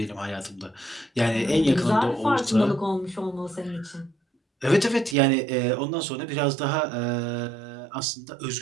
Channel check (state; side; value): drops out; left; at 5.2 s